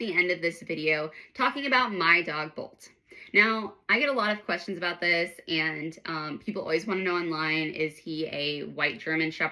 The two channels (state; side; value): identical; both; correlation 1.00